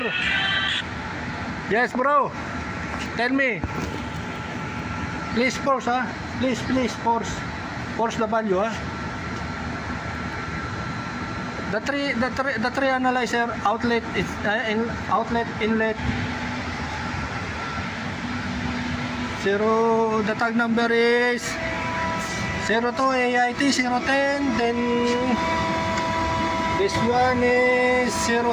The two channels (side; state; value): both; identical; correlation 1.00